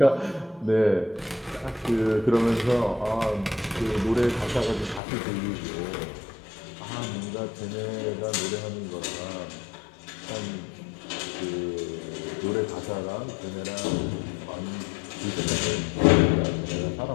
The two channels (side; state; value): right; drops out; at 5.0 s